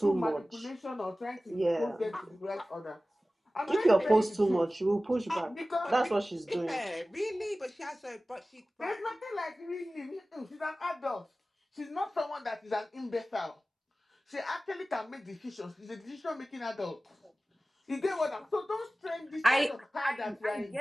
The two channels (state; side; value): normal; both; correlation 0.97